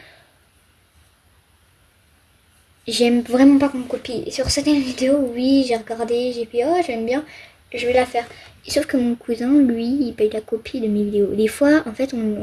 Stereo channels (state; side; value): identical; both; correlation 1.00